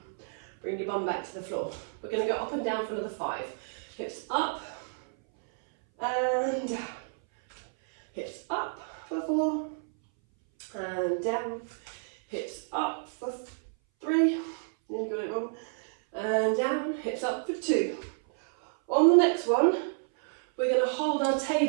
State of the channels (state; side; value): silent; left; 58 dB below the other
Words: Bring your bum back to the floor. We're going to go up and down for another 5. Hips up and down. Hips up for 4 and down. Hips up for 3. Nearly got it wrong. And down. Hips up for 2. On the next one, we're going to hold our